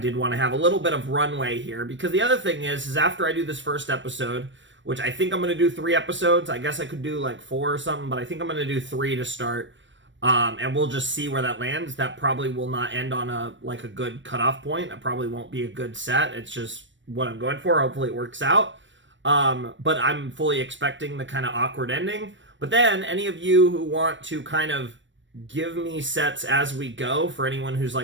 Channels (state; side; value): late; left; 0.54 ms